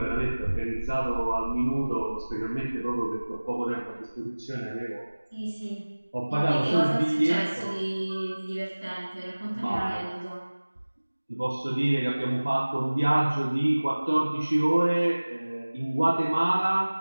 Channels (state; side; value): inverted; both; correlation -1.00